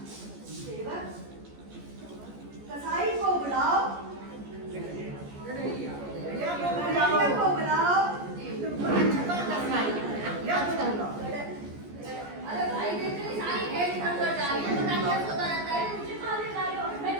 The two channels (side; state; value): left; late; 14 ms